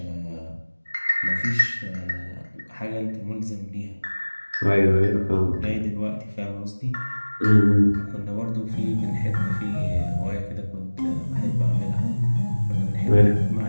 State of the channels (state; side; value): inverted; both; correlation -1.00